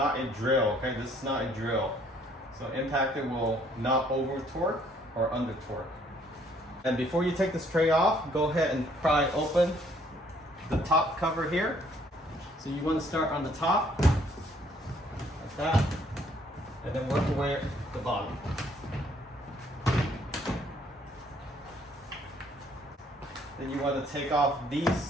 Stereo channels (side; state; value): both; normal; correlation 0.63